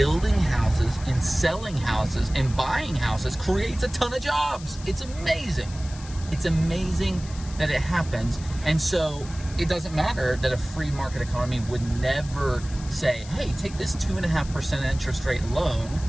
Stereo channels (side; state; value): left; noise; hiss, 17 dB below the sound